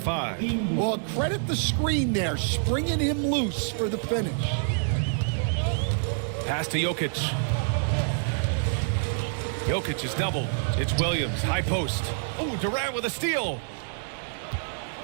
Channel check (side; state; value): left; silent; digital silence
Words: Well, credit the screen there, springing him loose for the finish. Pass to Jokic. Jokic is doubled. It's Williams, high post. Oh, Durant with a steal.